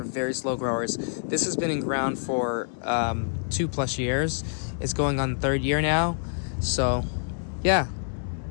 very slow growers. This has been in ground for 2+ years. It's going on the 3rd year now. So yeah,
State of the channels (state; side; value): silent; right; digital silence